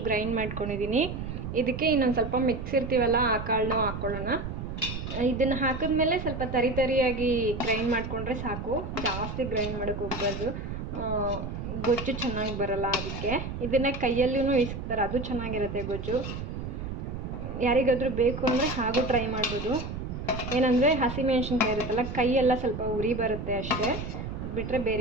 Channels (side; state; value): right; noise; rumble, 6 dB below the sound